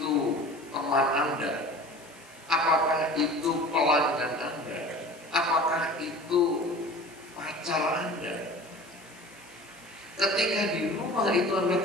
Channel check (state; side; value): noise; left; hiss, 24 dB below the sound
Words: teman Anda, apakah itu pelanggan Anda, apakah itu pacar Anda, ketika di rumah itu Anda